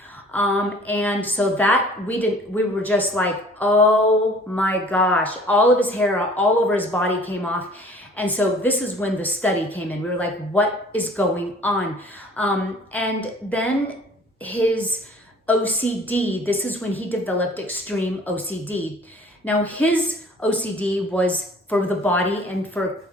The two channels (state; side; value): normal; both; correlation 0.50